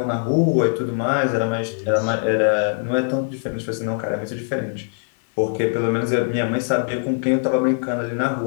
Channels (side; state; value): right; silent; digital silence